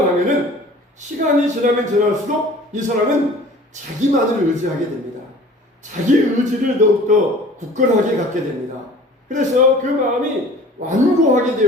하면은 시간이 지나면 지날수록 이 사람은 자기만을 의지하게 됩니다. 자기 의지를 더욱더 굳건하게 갖게 됩니다. 그래서 그 마음이 완고하게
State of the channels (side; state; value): both; normal; correlation 0.46